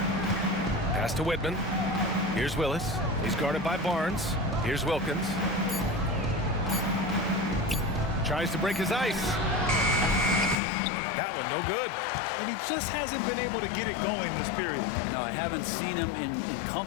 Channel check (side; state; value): right; drops out; at 10.6 s